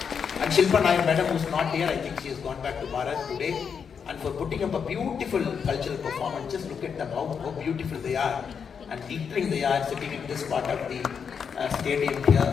And Shilpa Nair madam, who's not here, I think she has gone back to Bharat today, and for putting up a beautiful cultural performance. Just look at them, how beautiful they are, and glittering they are, sitting in this part of the stadium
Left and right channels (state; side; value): quieter; right; 6.6 dB